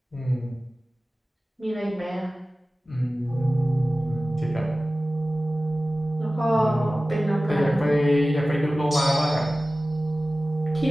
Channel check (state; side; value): normal; both; correlation 0.96